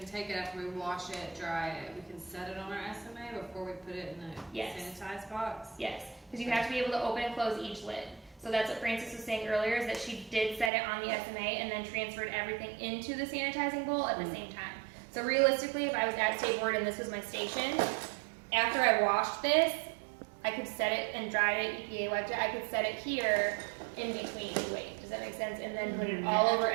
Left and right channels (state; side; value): drops out; left; at 10.7 s